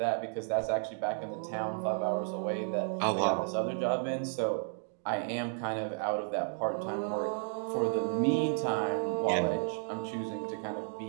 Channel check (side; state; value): left; silent; digital silence